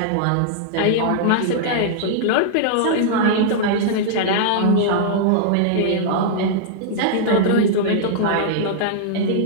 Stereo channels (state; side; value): different; both; correlation -0.02